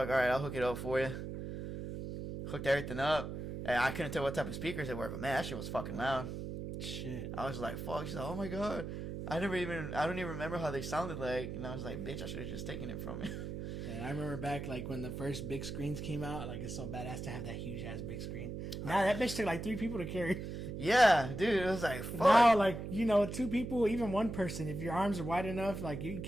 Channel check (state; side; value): noise; right; hum, 6 dB below the sound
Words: all right, I'll hook it up for you. Hooked everything up. And I couldn't tell what type of speakers they were, but man, that shit was fucking loud. Shit. I was like, fuck. She's like, oh my god. I don't even remember how they sounded like. And I was like, bitch, I should have just taken it from you. And I remember back like when the first big screens came out, like it's so badass to have that huge ass big screen. Now that bitch took like 3 people to carry. Yeah, dude, it was like fuck. Now like 2 people, even 1 person, if your arms are wide enough, like you can